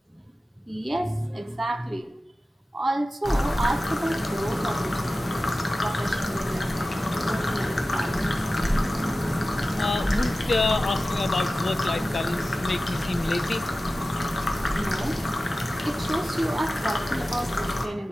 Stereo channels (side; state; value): both; normal; correlation 0.95